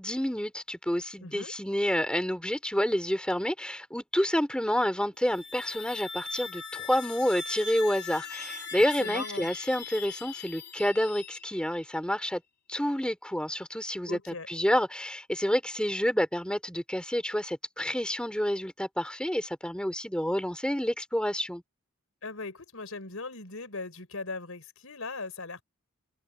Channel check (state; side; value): normal; both; correlation 0.90